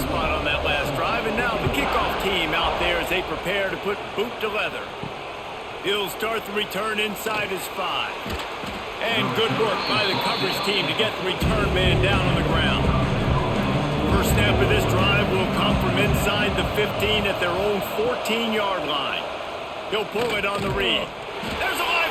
on that last drive, and now the kickoff team out there as they prepare to put boot to leather. He'll start the return inside his 5. And good work by the coverage team to get the return man down on the ground. First snap of this drive will come from inside the 15 at their own 14-yard line. He'll pull it on the read. There's a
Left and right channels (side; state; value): both; identical; correlation 1.00